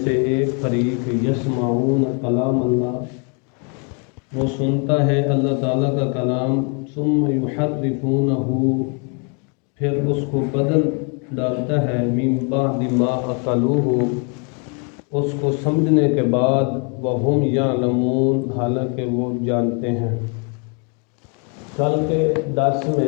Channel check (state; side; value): quieter; right; 37.5 dB